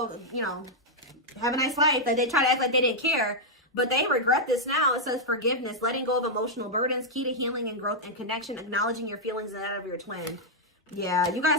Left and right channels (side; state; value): both; normal; correlation -0.04